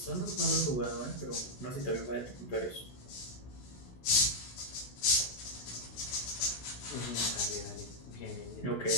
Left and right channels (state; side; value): late; right; 16 ms